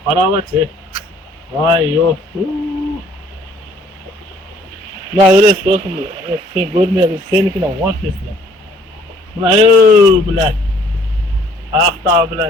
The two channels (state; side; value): normal; both; correlation 0.60